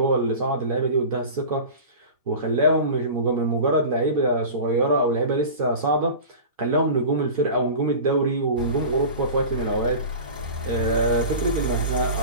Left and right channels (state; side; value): inverted; both; correlation -0.34